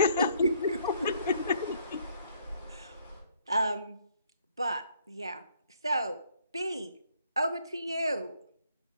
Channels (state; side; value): inverted; both; correlation -0.65